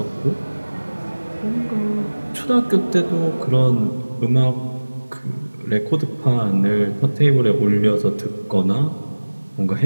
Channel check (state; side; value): inverted; both; correlation -1.00